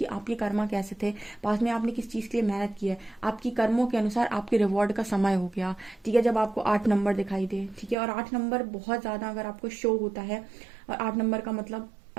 आपके कर्मा कैसे थे, पास में आपने किस चीज़ के लिए मेहनत की है, आपकी कर्मों के अनुसार आपके रिवॉर्ड का समय हो गया, ठीक है, जब आपको 8 नंबर दिखाई दे, ठीक है। और 8 नंबर बहुत ज़्यादा अगर आपको शो होता है, और 8 नंबर का मतलब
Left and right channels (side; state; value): left; drops out; at 8.0 s